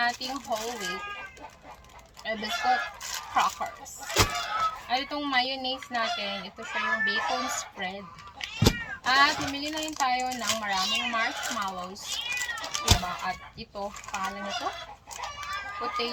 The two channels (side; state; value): both; identical; correlation 1.00